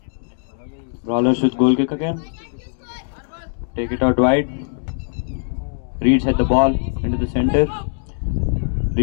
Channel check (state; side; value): silent; right; digital silence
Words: Brawlers with goal kick again. Take it out wide. Reeds had the ball into the center.